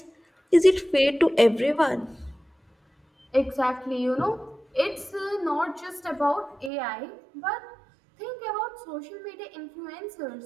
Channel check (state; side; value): drops out; left; at 6.7 s